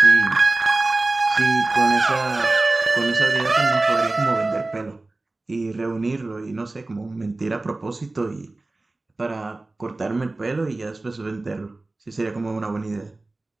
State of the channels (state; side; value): quieter; left; 3.1 dB